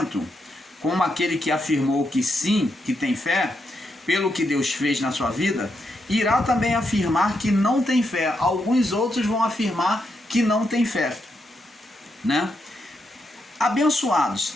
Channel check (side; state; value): both; normal; correlation 0.82